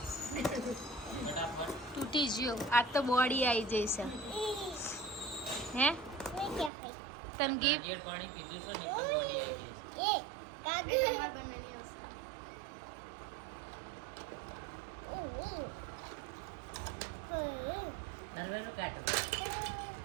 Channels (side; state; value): left; drops out; at 6.7 s